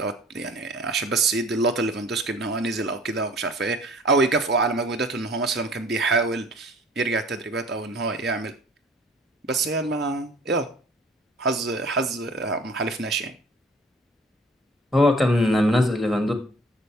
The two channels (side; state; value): both; normal; correlation 0.50